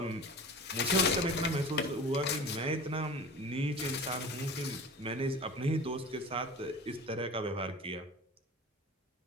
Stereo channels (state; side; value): normal; both; correlation 0.36